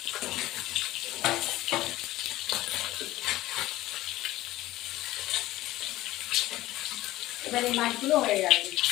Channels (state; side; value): quieter; right; 16.4 dB